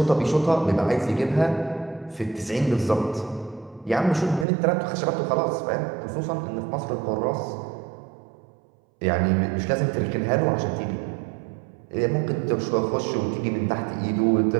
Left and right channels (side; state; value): left; drops out; at 4.5 s